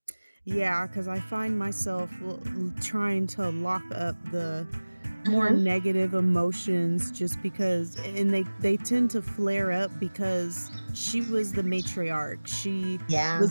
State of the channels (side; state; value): both; inverted; correlation -1.00